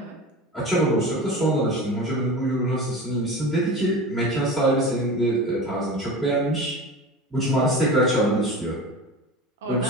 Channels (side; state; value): both; normal; correlation 0.32